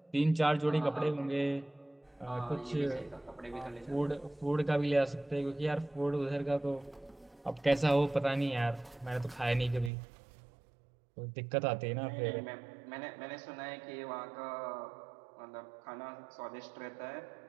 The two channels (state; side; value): drops out; left; at 9.9 s